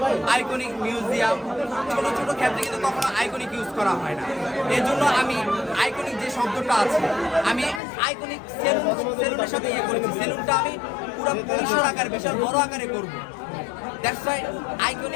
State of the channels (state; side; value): drops out; right; at 7.8 s